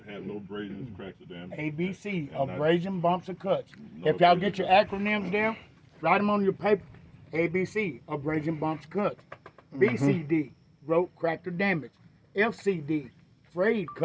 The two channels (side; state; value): both; identical; correlation 1.00